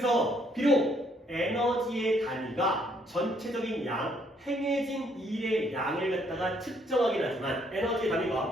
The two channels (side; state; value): both; normal; correlation 0.68